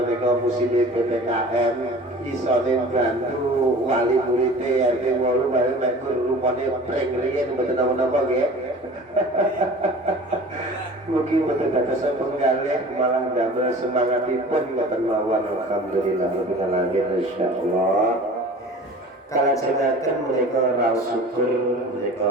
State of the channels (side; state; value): both; normal; correlation 0.42